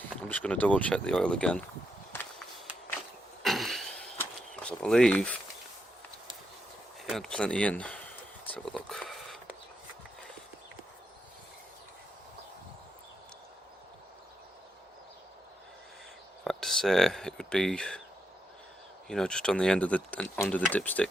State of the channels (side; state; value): both; normal; correlation 0.82